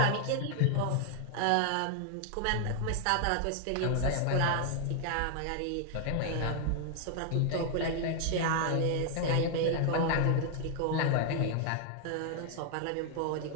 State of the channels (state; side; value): different; both; correlation 0.00